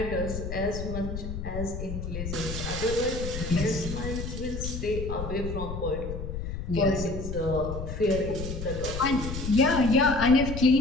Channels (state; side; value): noise; left; rumble, 6 dB below the sound